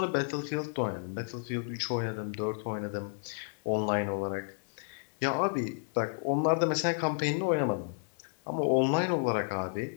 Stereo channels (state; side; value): silent; right; digital silence